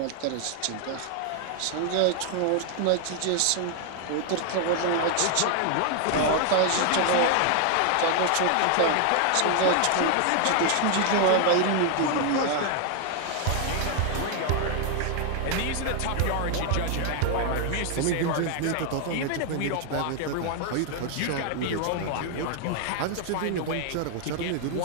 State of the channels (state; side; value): different; both; correlation 0.00